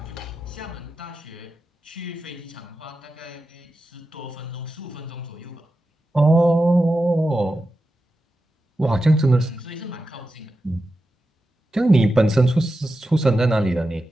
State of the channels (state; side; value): normal; both; correlation 0.91